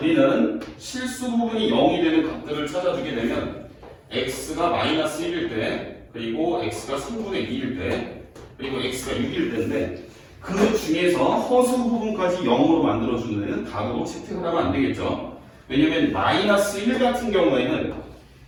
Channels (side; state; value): both; identical; correlation 1.00